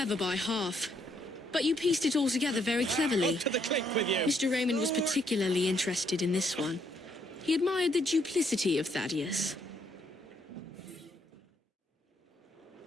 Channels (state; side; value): normal; both; correlation 0.72